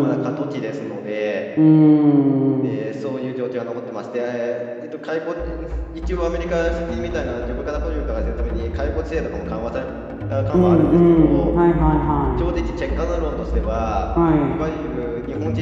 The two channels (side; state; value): both; identical; correlation 1.00